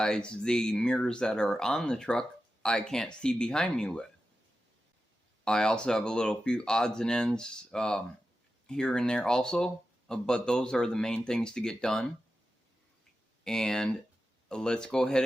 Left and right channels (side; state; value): both; normal; correlation 0.91